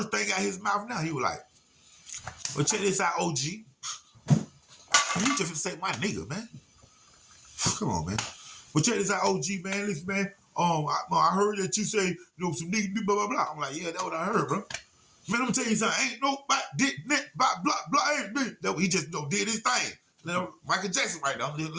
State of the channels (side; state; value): both; identical; correlation 1.00